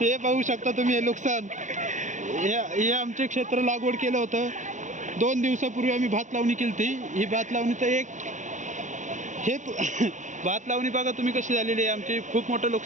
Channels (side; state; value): left; late; 0.36 ms